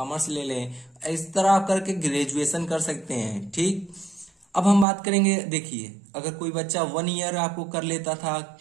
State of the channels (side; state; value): left; drops out; at 4.9 s